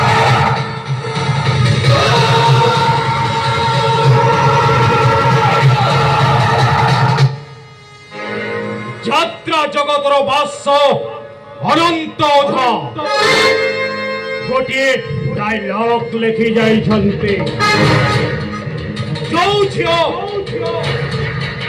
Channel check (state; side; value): identical; both; correlation 1.00